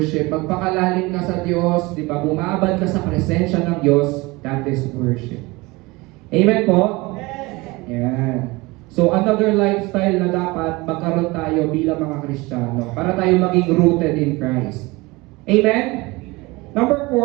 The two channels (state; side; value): quieter; left; 23.1 dB